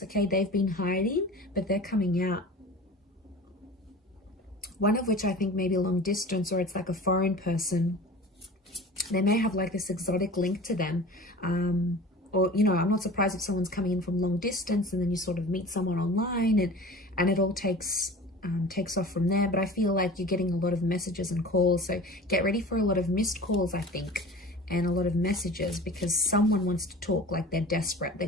Okay, they've been hiding, but they're coming out. One of which I think may be long distance, or it's like a foreign person. They may have like this exotic link to them. Or, you know, I'm not surprised if someone's coming in from long distance and then you sort of meet someone online and it all takes off from there. But I feel like you're getting a lot of messages and calls. So get ready for a lot of missed calls, I think, and a lot of messages, because someone wants to talk, like they're desperate. They're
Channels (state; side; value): normal; both; correlation 0.39